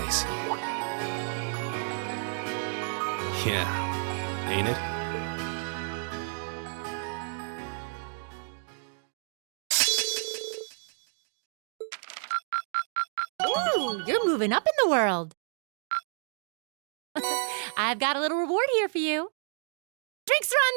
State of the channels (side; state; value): left; silent; 57 dB below the other